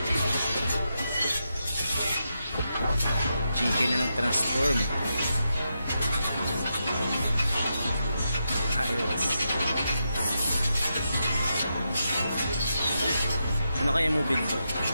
Chicken na nag-transform. Ayos. Ano kaya mo build to?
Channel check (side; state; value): both; inverted; correlation -0.85